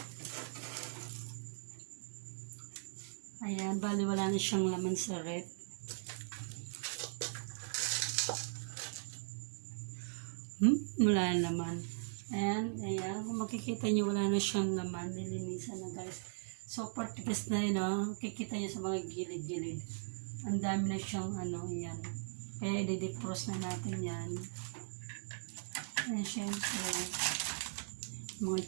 Ayan, bali wala na siyang laman sa rep. Wala na naman. Ayan, kung makikita nyo, wala na siyang laman. Nilinisan na guys. Super tigas na yun, oh. Kikita nyo sa mga gilid-gilid. Ang dami na siyang ayan. Kaya i-defrost na natin yan. Ayan, syempre. Mga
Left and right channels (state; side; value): silent; left; 52 dB below the other